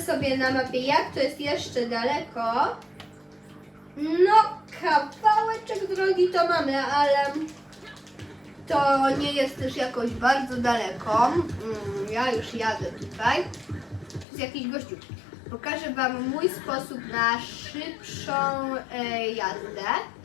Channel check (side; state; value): right; drops out; at 14.2 s